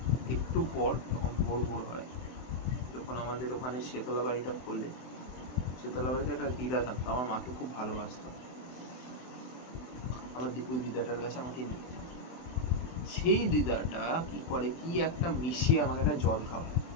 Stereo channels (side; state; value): right; late; 24 ms